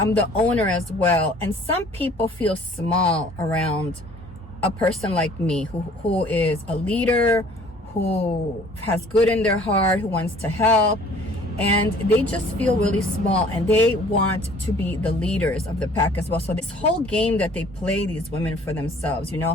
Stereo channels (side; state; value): both; normal; correlation 0.53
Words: the owner as well. And some people feel small around a person like me who is a leader, who has good in their heart, who wants to help. And they just feel really small, and they want to be the leaders of the pack as well. So this whole game that they play, these women, for themselves, you